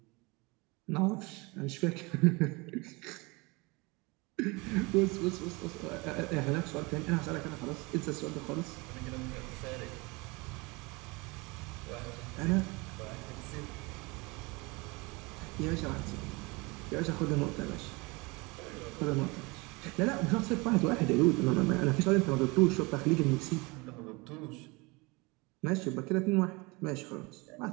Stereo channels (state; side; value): quieter; left; 26.1 dB